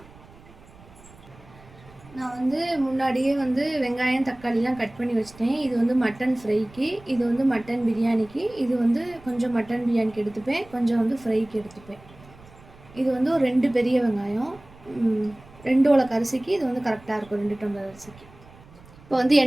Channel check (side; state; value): right; noise; rumble, 23 dB below the sound